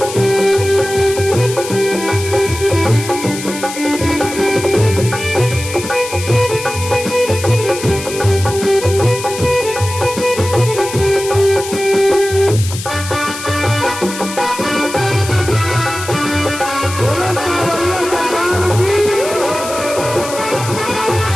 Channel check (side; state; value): left; noise; hiss, 10 dB below the sound